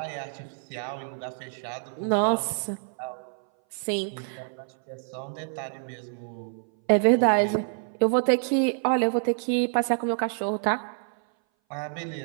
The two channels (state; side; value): silent; left; 58 dB below the other